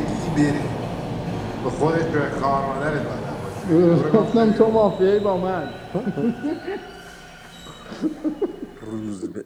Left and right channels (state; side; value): identical; both; correlation 1.00